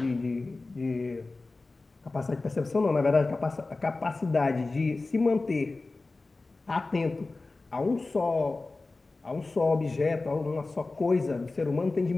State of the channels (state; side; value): quieter; right; 3.4 dB